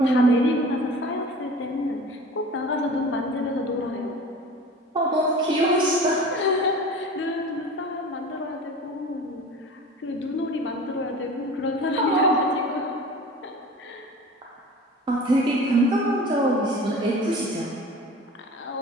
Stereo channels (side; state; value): both; normal; correlation 0.39